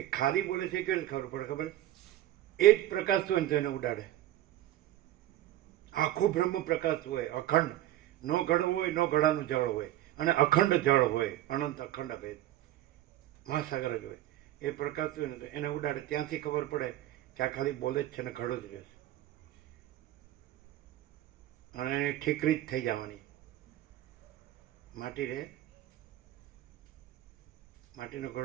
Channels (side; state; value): left; quieter; 14.0 dB